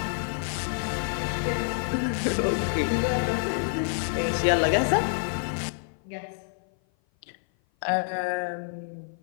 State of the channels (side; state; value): right; silent; 56 dB below the other